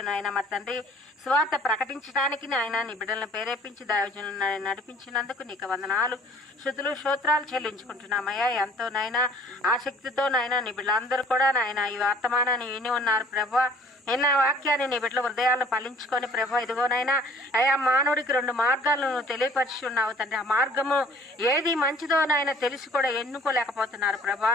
నాయన మరి తండ్రి స్వార్థ ప్రకటించడానికి నాయన నీ బిడ్డలను ప్రేరేపించి దైవజనులను నడిపించినందుకు నీకు వందనాలు స్తుతులు స్తోత్రాలు చెల్లించుకుంటున్నామయ్యా. ఎంతో నాయన ఆసక్తితో నాయన నీ బిడ్డలందరూ కూడా నాయన ఈ వర్తమానాన్ని విని ఉన్నారు ప్రభా. ఎన్న వాక్యాన్ని నీ బిడ్డల హృదయాలను ఫలించుకొని ప్రభా, ఇదిగోనైనా అయా మానవుడికి 2 మార్గాలను నువ్వు తెలియపరిచి ఉన్నావు తండ్రి. ఆ మార్గము ఏది మంచిదో నాయన తెలిసి కూడా ఎన్నుకోలేకపోతున్నారు ప్రభా.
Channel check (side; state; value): both; normal; correlation 0.53